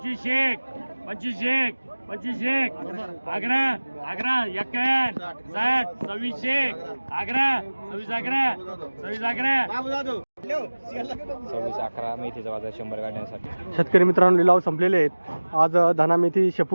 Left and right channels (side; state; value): both; inverted; correlation -1.00